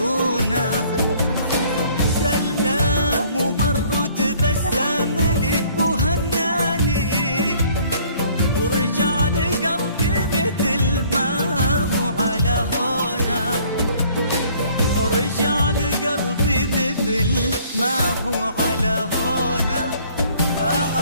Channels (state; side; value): inverted; both; correlation -0.57